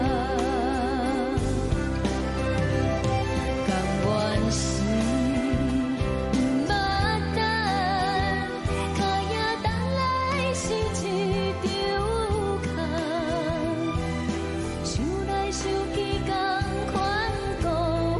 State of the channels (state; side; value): identical; both; correlation 1.00